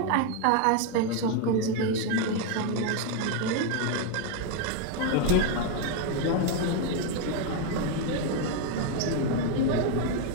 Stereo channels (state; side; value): different; both; correlation 0.01